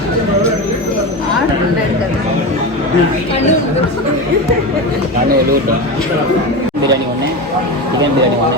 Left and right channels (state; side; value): normal; both; correlation 0.22